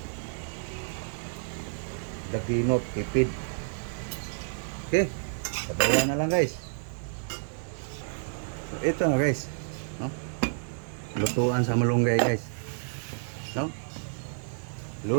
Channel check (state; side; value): silent; left; digital silence